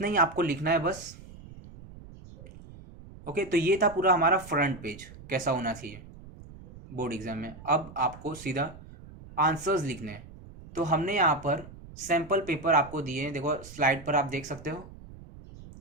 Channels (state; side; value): noise; right; rumble, 17 dB below the sound